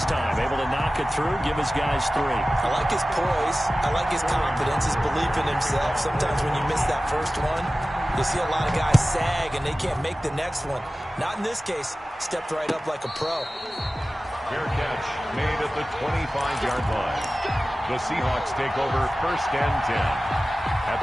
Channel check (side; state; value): both; normal; correlation 0.96